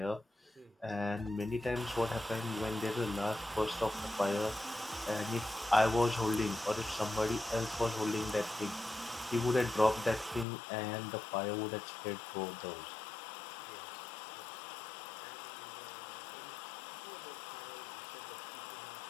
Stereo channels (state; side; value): drops out; right; at 10.5 s